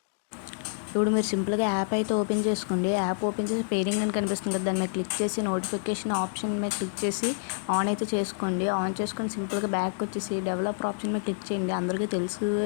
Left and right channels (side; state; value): right; silent; digital silence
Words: ఇప్పుడు మీరు సింపుల్గా యాప్ అయితే ఓపెన్ చేసుకోండి. యాప్ ఓపెన్ చేసి పేరింగ్ అని కనిపిస్తుంది కదా, దాని మీద క్లిక్ చేసి నోటిఫికేషన్ ఆప్షన్ మీద క్లిక్ చేసి ఆన్ అయితే చేసుకోండి. ఆన్ చేసుకొని సింపుల్గా బ్యాక్ వచ్చేసి డెవలపర్ ఆప్షన్ మీద క్లిక్ చేయండి. అందరికీ